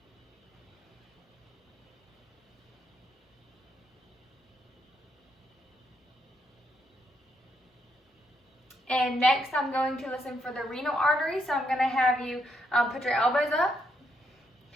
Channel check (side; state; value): both; normal; correlation 0.77